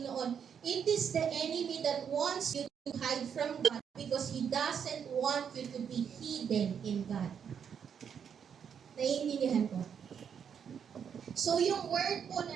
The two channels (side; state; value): left; quieter; 7.6 dB